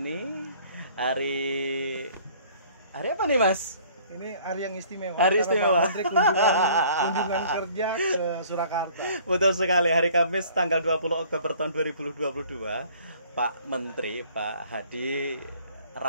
hari apa nih Mas? Ini hari yang istimewa. Hari istimewa. Menteri kunjungan kerja ke Surakarta. Betul sekali, hari Kamis tanggal 20 Oktober tahun 2022. Pak Menteri, Pak Hadi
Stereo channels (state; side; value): inverted; both; correlation -0.54